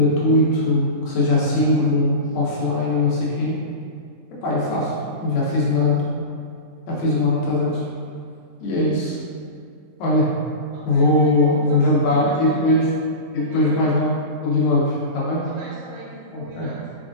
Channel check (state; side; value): late; right; 3.7 ms